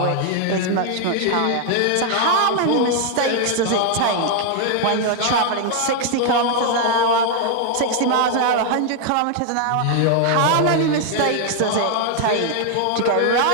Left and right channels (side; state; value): both; different; correlation 0.00